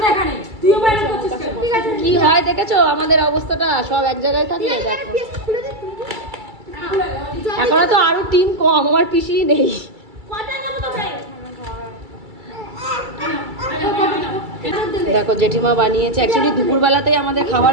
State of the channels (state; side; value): late; left; 2.3 ms